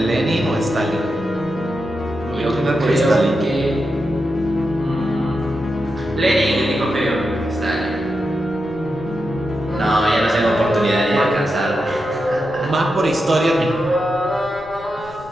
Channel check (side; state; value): left; noise; rumble, 21 dB below the sound